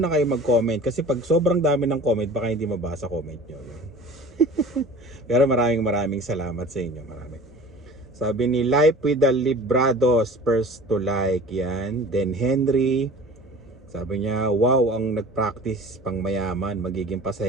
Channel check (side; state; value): both; normal; correlation 0.42